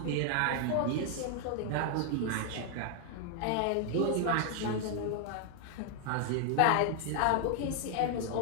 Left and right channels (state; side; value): different; both; correlation 0.00